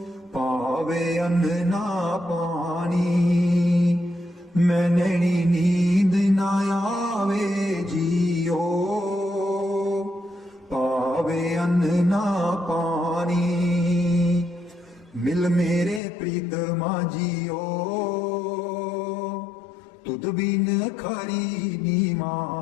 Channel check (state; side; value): drops out; right; at 16.0 s